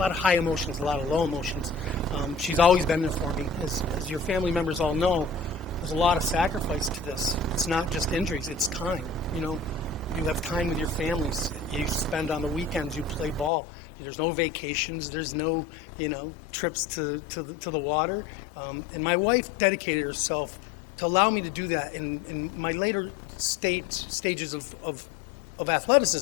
high emotions, a lot of low emotions. She's always been there for me. As your family members all know, there's a lot of sacrifice to this. It's not just injuries, it's time. You know, you have time with your families. You spend on the weekends, you play ball. There's no vacations, there's no, trips to the water. And my wife dedicated herself to allow me to do that in my later stages of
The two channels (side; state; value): right; drops out; at 13.5 s